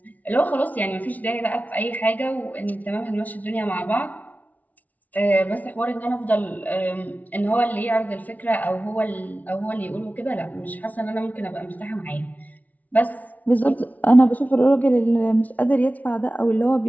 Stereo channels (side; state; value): right; late; 0.074 ms